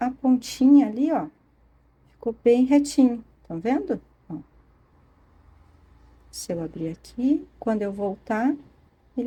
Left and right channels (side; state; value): both; identical; correlation 1.00